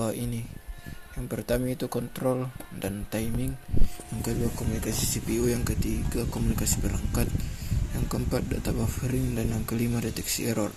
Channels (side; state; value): both; identical; correlation 1.00